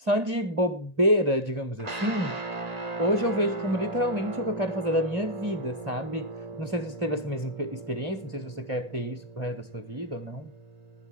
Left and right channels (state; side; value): late; left; 1.8 ms